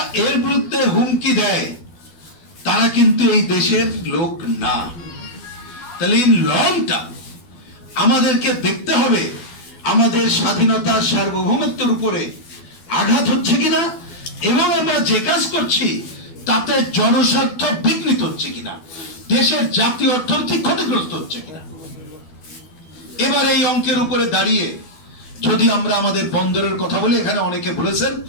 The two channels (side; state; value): right; late; 12 ms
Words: এর বিরুদ্ধে হুমকি দেয় তারা কিন্তু এই দেশের লোক না। তাহলে ইন লং টার্ম আমাদেরকে দেখতে হবে আমাদের স্বাধীনতা, সার্বভৌমত্বের উপরে আঘাত হচ্ছে কিনা এবং আমরা যে কাজ করছি তাতে জনস্বার্থ বিঘ্নিত হচ্ছে কিনা, দেশের জাতীয় অর্থনীতি ক্ষতিগ্রস্ত হচ্ছে কিনা। এবার এই অঙ্কের উপরে দাঁড়িয়ে যদি আমরা আমাদের বন্দরের কথা বলি, এখানে অনেকে বলেছেন,